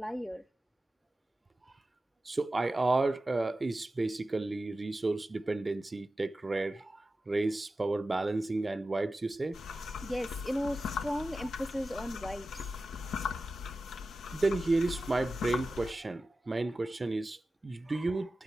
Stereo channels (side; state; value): both; normal; correlation 0.94